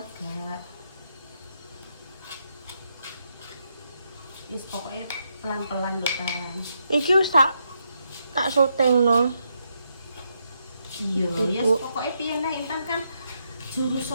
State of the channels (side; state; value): both; inverted; correlation -0.80